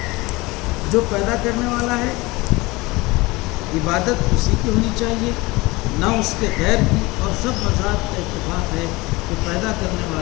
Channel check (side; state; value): right; quieter; 22.5 dB